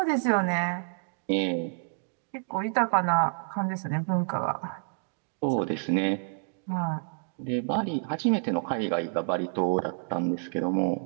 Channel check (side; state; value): left; silent; digital silence